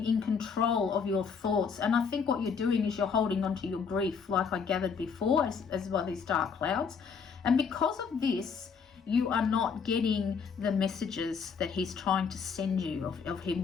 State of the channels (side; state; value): right; quieter; 5.9 dB